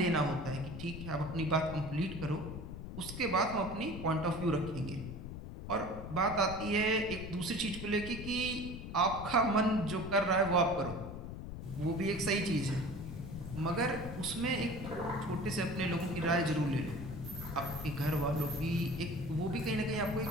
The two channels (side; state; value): left; noise; rumble, 9 dB below the sound